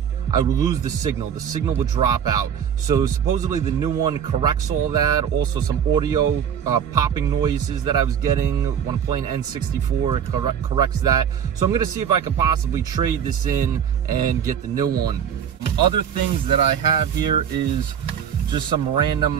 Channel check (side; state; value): left; quieter; 8.3 dB